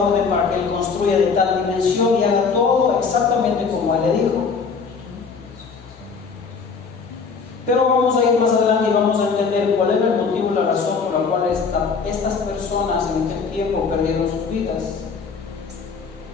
para que él construya de tal dimensión y haga todo exactamente como él le dijo. Pero vamos a ir más adelante y vamos a entender cuál era el motivo y la razón por la cual estas personas en aquel tiempo perdieron sus vidas.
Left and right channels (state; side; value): quieter; right; 5.3 dB